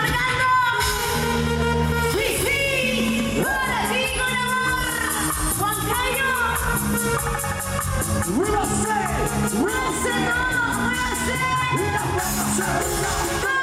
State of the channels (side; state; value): both; identical; correlation 1.00